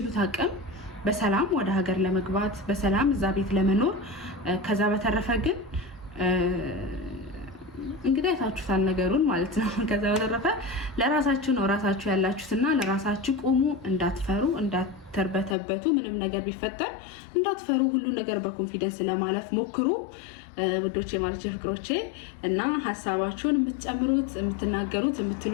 አቅም በሰላም ወደ ሀገር ለመግባት በሰላም እዛ ቤት ለመኖር። ከዛ በተረፈ ግን እንግዲህ አይታችሁታል ነገሩን ማለት ነው። ከዛ በተረፈ ለራሳችሁ ነው ራሳችሁ ያላችሁትና ለራሳችሁ ቁሙ። እንዳትፈሩ፣ እንዳትርበተበቱ፣ ምንም ነገር ቢፈጠር እንዳትፈሩ። ሁሉ ነገር በኮንፊደንስ ለማለፍ ሞክሩ ውዶቼ ማለት ፍቅሮቼ። እና ሀሳባችሁን የምትጨምሩት የምትናገሩት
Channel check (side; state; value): right; drops out; at 15.6 s